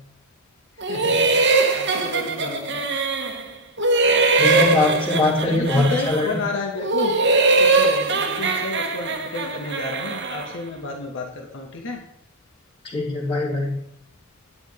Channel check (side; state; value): both; normal; correlation -0.03